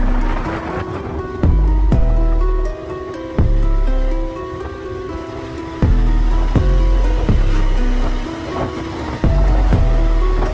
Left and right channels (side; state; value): both; identical; correlation 1.00